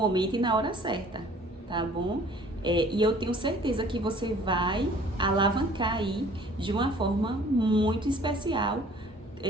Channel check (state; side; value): normal; both; correlation 0.53